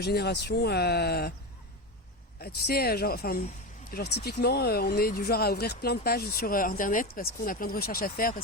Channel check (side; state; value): both; normal; correlation 0.18